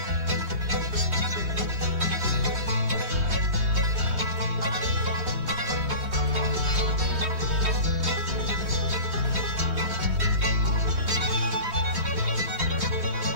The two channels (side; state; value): left; late; 3.2 ms